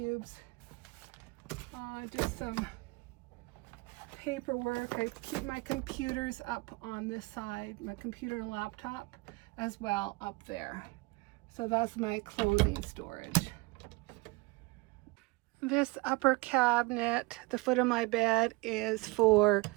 Just some paperwork. I keep my computers up on this side, my computer and laptop as well up there. So that's my clothing storage. This upper cabinet, the foot of my bed, is for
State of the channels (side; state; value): left; quieter; 25.0 dB